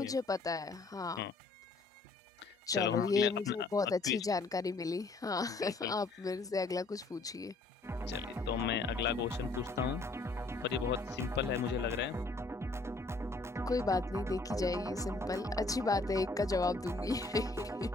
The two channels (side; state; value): right; quieter; 3.4 dB